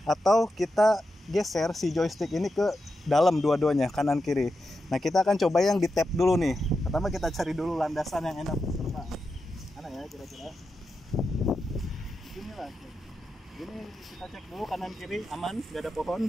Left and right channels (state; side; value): normal; both; correlation 0.88